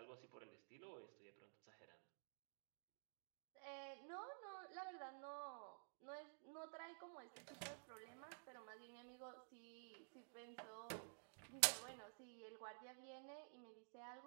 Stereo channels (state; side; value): silent; left; digital silence